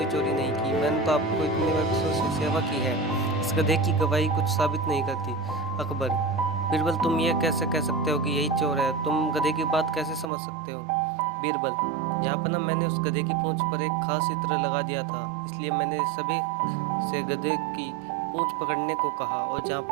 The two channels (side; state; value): left; drops out; at 10.2 s